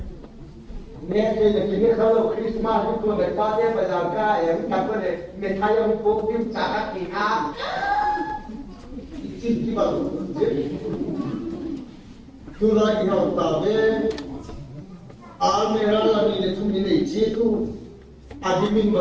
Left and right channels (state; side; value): identical; both; correlation 1.00